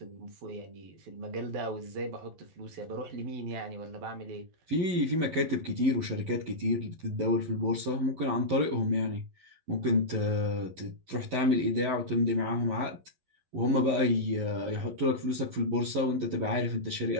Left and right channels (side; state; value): left; late; 11 ms